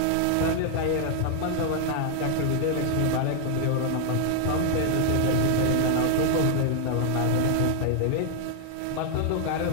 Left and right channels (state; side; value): different; both; correlation 0.00